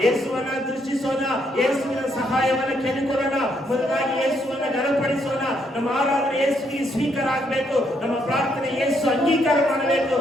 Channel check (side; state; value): both; normal; correlation 0.74